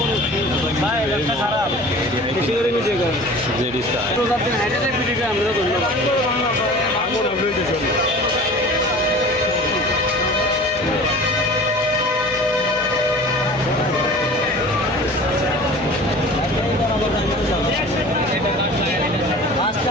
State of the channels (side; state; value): left; noise; hum, 21 dB below the sound